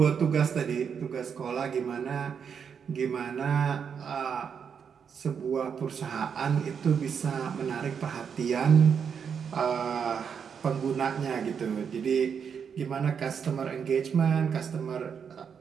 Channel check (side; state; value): left; quieter; 6.9 dB